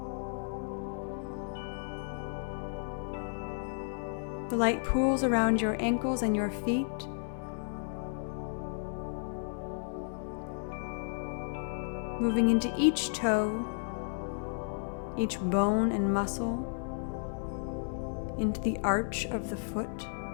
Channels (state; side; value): silent; right; digital silence